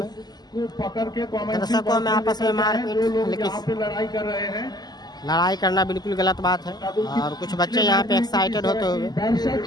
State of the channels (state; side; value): late; right; 0.20 ms